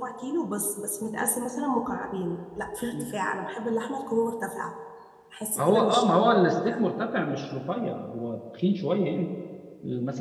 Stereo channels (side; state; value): both; identical; correlation 1.00